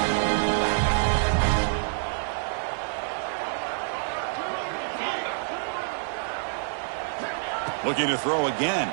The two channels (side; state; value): left; silent; digital silence